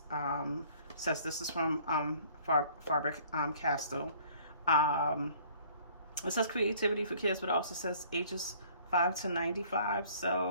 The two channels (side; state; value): both; inverted; correlation -0.55